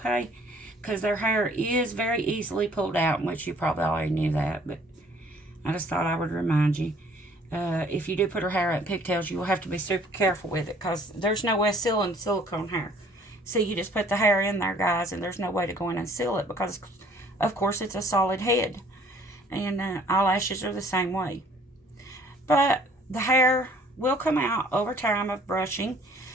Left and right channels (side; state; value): both; normal; correlation 0.57